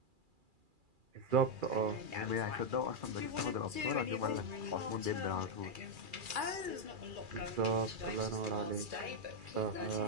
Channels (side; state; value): left; late; 2.4 ms